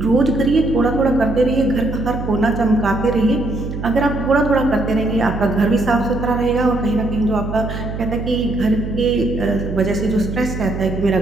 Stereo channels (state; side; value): noise; right; hum, 7 dB below the sound